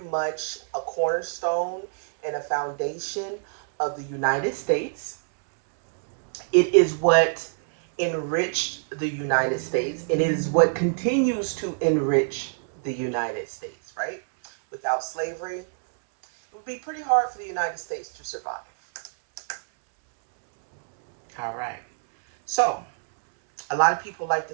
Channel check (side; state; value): left; silent; 62 dB below the other